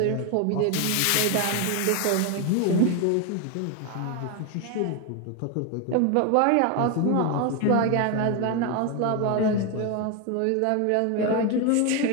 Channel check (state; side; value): different; both; correlation 0.02